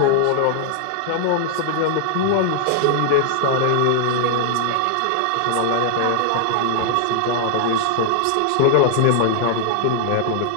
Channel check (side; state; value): both; different; correlation 0.00